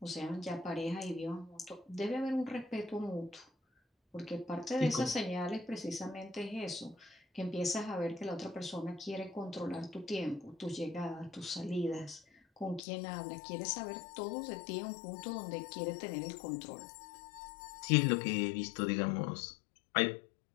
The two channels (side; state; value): right; drops out; at 12.8 s